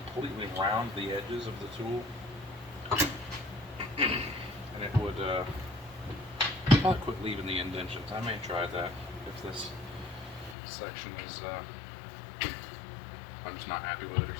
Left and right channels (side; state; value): right; drops out; at 10.6 s